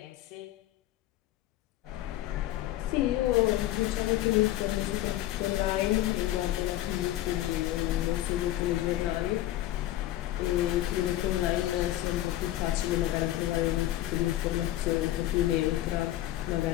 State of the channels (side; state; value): right; quieter; 14.3 dB